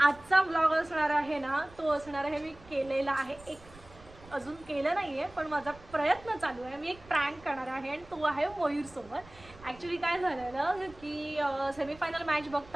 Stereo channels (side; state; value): right; noise; rumble, 22 dB below the sound